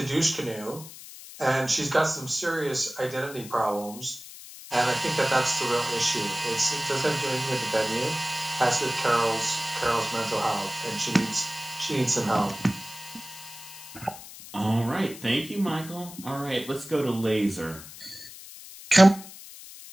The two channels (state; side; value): noise; left; hiss, 15 dB below the sound